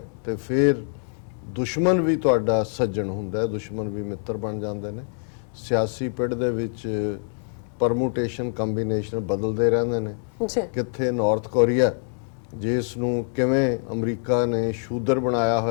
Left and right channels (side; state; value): right; silent; 56 dB below the other